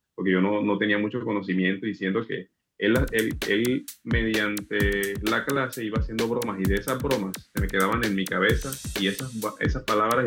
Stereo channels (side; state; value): both; identical; correlation 1.00